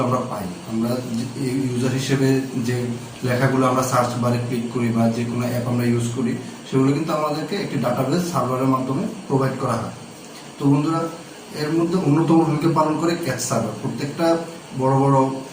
আমরা পাই। আমরা ইউজার হিসেবে যে লেখাগুলো আমরা সার্চ বারে ক্লিক করি বা যে কোনো অ্যাপ আমরা ইউজ করি, সেগুলো কিন্তু আমাদেরকে একটি ডাটাবেস সার্ভারের মাধ্যমে প্রোভাইড করা হয়। তো বন্ধুরা, এর মধ্যে অন্যতম ভূমিকা পালন করে ক্যাচ সার্ভার। প্রত্যেকটা বড় বড়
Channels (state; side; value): identical; both; correlation 1.00